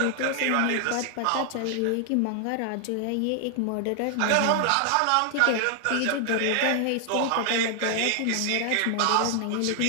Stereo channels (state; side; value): different; both; correlation 0.00